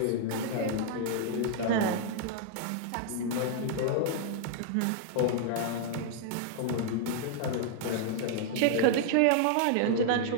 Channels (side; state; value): both; different; correlation -0.01